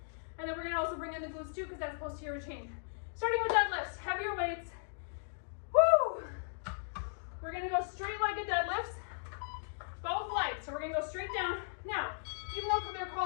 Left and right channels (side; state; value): right; silent; digital silence